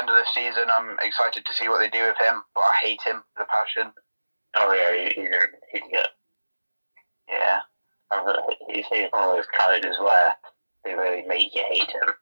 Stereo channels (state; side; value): inverted; both; correlation -1.00